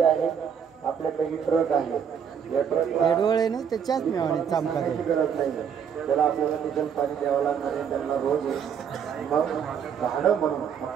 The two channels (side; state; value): left; quieter; 7.7 dB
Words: आहे आपल्या काही ट्रक आहे या ट्रकला त्याच्याच मिळाली गरज नाही त्याला आपल्याला डिझेल पाणी द्यावं लागणार आहे त्यांना रोज मग भाडं म्हणून